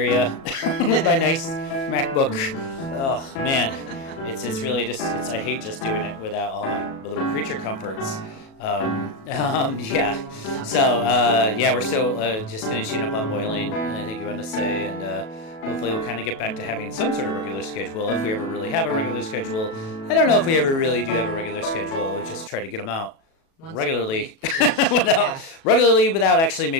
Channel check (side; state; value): right; late; 37 ms